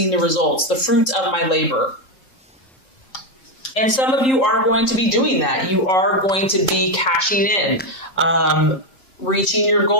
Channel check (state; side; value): late; right; 3.7 ms